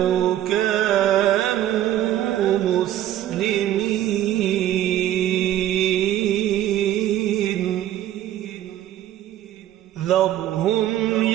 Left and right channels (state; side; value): quieter; left; 12.4 dB